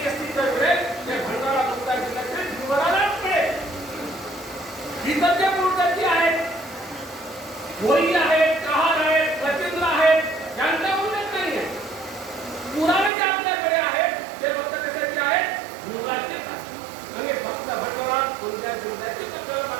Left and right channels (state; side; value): drops out; left; at 13.1 s